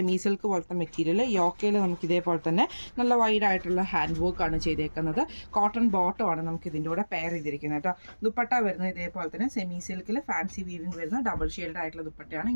സിൽക്ക് പോലത്തെ മെറ്റീരിയൽ. യോക്കയിൽ നമുക്ക് ഇതേപോലെ തന്നെ നല്ല വൈഡ് ആയിട്ടുള്ള ഹാൻഡ് വർക്കാണ് ചെയ്തേക്കുന്നത്. കോട്ടൺ ബോട്ടമാണ് നമുക്ക് ഇതിൻ്റെ കൂടെ പെയർ ചെയ്തിരിക്കുന്നത് കേട്ടോ. ദുപ്പട്ട വരുന്നത് ഇതേപോലെ തന്നെ സെമി സിൽക്കിൽ ഫാൻസി വീവിങ് വരുന്ന ഡബിൾ ഷെയ്ഡ് ആയിട്ടുള്ള ദുപ്പട്ടയാണ്.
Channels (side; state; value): both; inverted; correlation -1.00